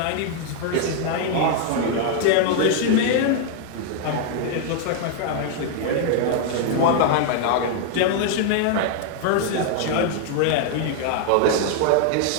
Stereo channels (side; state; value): both; different; correlation 0.00